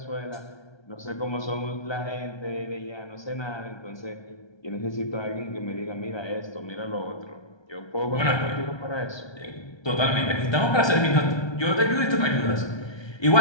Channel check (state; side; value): late; right; 1.3 ms